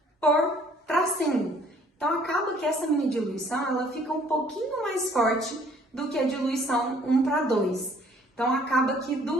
por tracinho. Então, acaba que essa minha diluição, ela fica um pouquinho mais forte do que a diluição 1:2. Então, acaba que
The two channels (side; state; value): both; normal; correlation 0.59